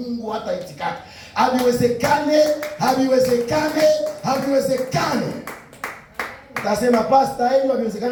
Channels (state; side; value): identical; both; correlation 1.00